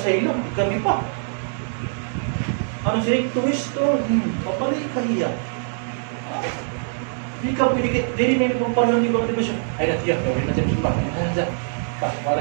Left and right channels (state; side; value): silent; left; digital silence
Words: Kami pa. Ano siya? Tuwisto. Papalik ka hiya. Hindi ka pwede. Dili na yung pagpalahan di ba siya? Ay natiyak. Rin na siya simba.